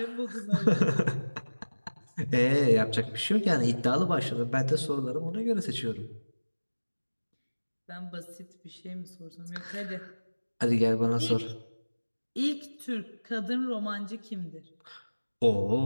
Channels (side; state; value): both; inverted; correlation -1.00